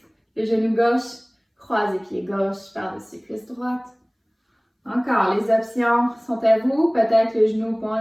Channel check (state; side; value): identical; both; correlation 1.00